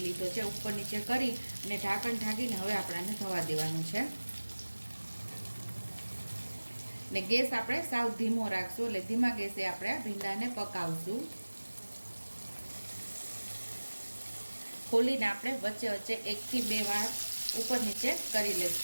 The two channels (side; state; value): both; inverted; correlation -1.00